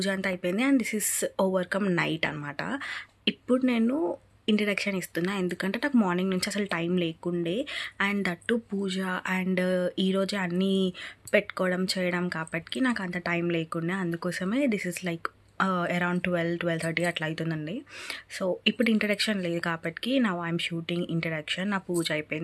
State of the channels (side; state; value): both; identical; correlation 1.00